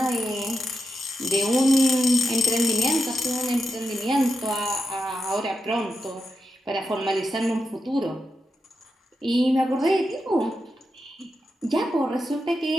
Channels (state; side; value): normal; both; correlation 0.88